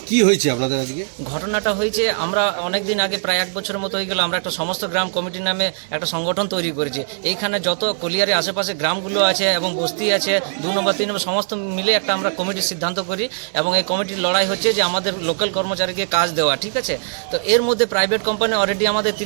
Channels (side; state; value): left; silent; 65 dB below the other